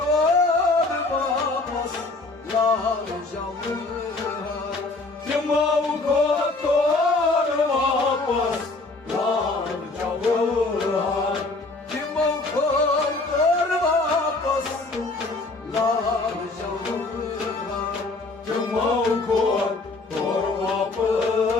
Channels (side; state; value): right; quieter; 3.3 dB